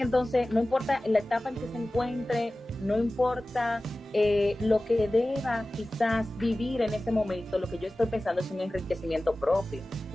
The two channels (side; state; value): both; normal; correlation 0.96